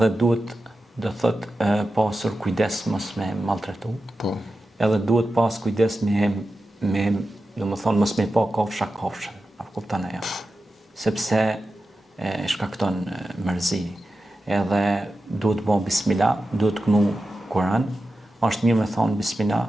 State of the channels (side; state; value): both; normal; correlation 0.92